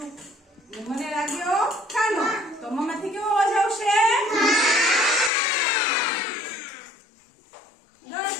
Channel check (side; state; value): right; drops out; at 5.3 s